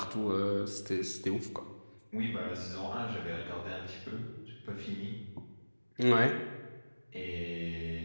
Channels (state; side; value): inverted; both; correlation -1.00